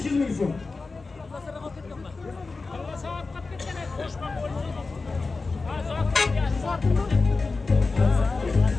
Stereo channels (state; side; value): quieter; right; 3.9 dB